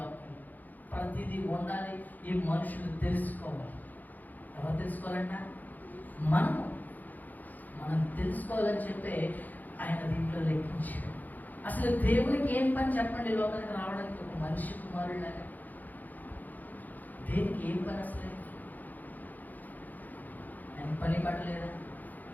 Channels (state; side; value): late; right; 0.083 ms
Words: ప్రతిదీ ఉండాలి, ఈ మనుషులు తెలుసుకోవాలి. ఎవరు తెలుసుకోవాలంట? మనం తెలుసుకోవాలని చెప్పి ఆయన దీంట్లో లెక్కించాడు. అసలు దేవునికి ఏం పని చెప్పండి? లోకానికి రావడానికి ఒక మనిషి కుమారులాగా దేనికి ఏం పని? అసలు ఆయన పని పడలేదా?